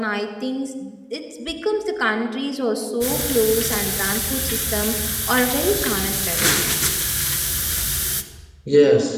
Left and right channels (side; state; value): both; identical; correlation 1.00